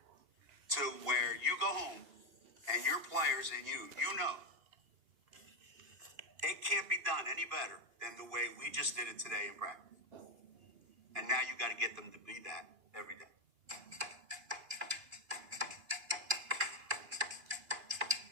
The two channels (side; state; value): left; late; 2.9 ms